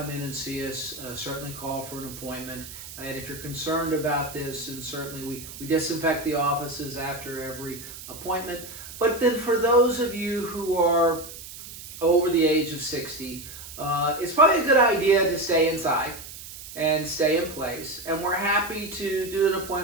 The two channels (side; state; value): right; noise; hiss, 13 dB below the sound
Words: in and see us, certainly call for an appointment. And if you're concerned about this, and certainly we disinfect the offices after every appointment. But then for those of you who are over the age of 60, it's probably a good idea to stay inside and stay in place. And we're happy to do an